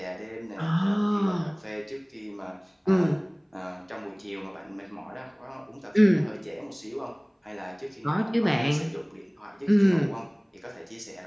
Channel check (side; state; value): both; identical; correlation 1.00